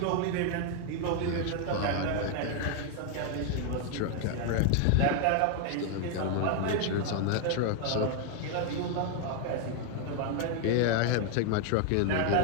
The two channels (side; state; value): both; different; correlation 0.00